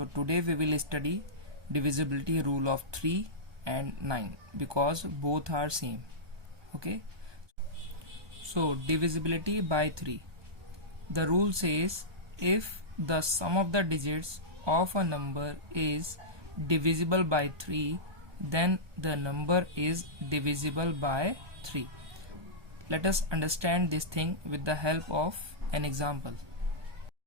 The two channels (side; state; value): left; late; 1.2 ms